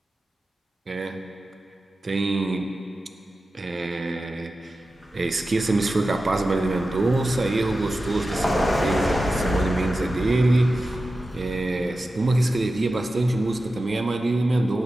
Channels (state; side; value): normal; both; correlation 0.93